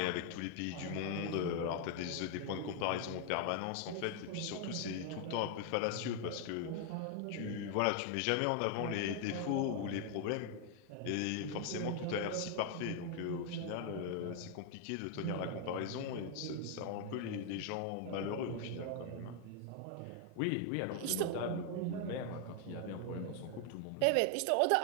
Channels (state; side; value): different; both; correlation 0.00